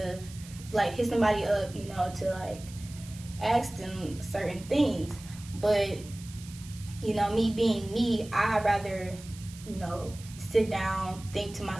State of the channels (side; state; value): right; noise; hiss, 18 dB below the sound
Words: like hit somebody up, to like ask them certain things. But me being me, I'd rather sit down, think to